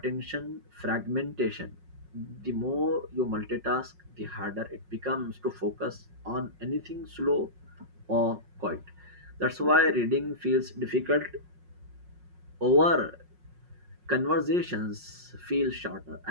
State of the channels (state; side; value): late; left; 5.5 ms